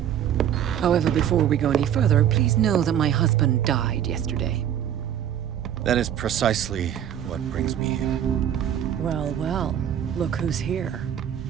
However, before we go any further, please know that my husband died yesterday. That is precisely what brings me here. Well, well, look who's here.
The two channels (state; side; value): quieter; left; 9.9 dB